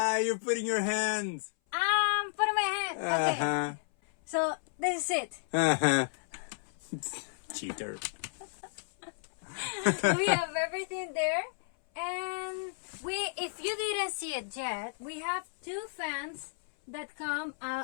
you're putting your hands. Putting my hand. Okay. Uh-huh. So this is it. Uh-huh. Cheater. We have everything there, and if you didn't see it yet, we have two fans that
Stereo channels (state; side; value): silent; right; 56 dB below the other